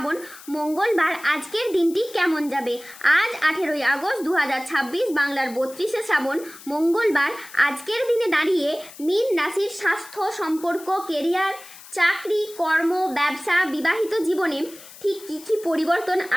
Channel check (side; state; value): left; noise; hiss, 18 dB below the sound